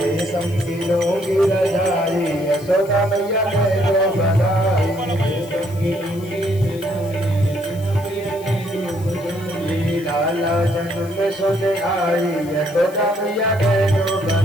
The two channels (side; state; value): left; noise; hiss, 21 dB below the sound